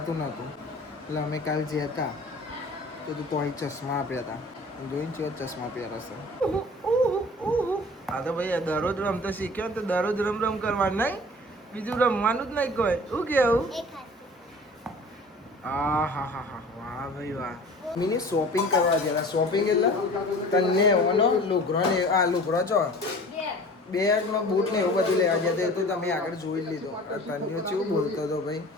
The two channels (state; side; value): normal; both; correlation 0.43